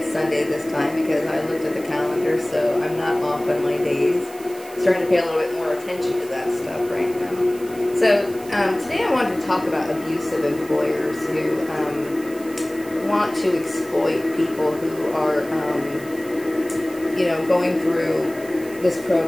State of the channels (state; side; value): noise; right; hiss, 19 dB below the sound